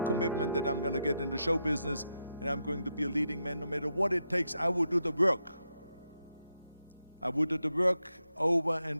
that I'm gonna get in the show business and I'm going to be a leading man. No matter what it takes, I will do the work. I will do the work over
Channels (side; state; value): both; inverted; correlation -0.84